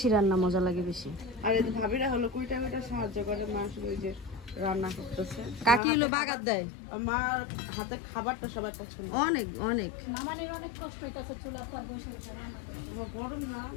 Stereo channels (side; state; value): right; drops out; at 5.8 s